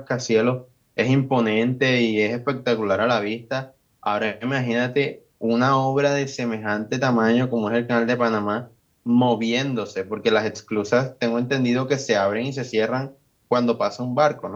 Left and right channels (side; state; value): both; identical; correlation 1.00